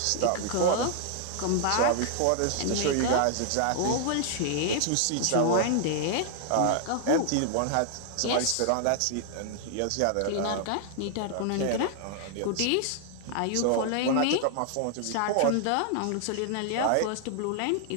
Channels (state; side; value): different; both; correlation 0.00